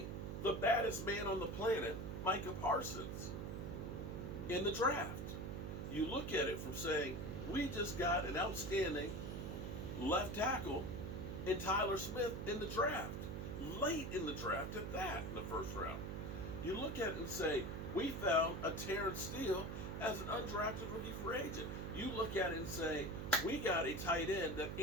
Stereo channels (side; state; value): right; noise; hum, 5 dB below the sound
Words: the baddest man on the planet, Micah Parsons, in the draft. You look at it from saying, we just got an outstanding left tackle in Tyler Smith in the draft, late in the draft at that, in the first round. You look at it and say, we found a Terrence Steele as an undrafted rookie free agent. You look at it and say, we got a tight end that